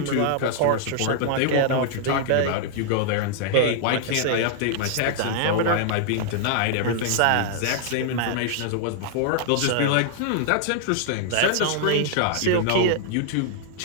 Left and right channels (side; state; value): both; different; correlation -0.01